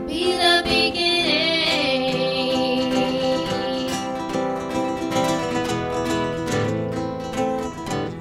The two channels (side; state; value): both; identical; correlation 1.00